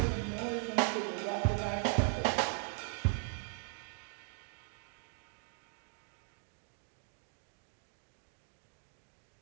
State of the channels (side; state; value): left; silent; digital silence